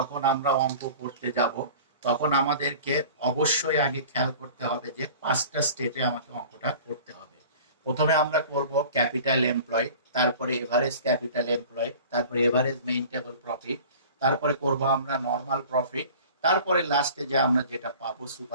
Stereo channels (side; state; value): both; inverted; correlation -0.42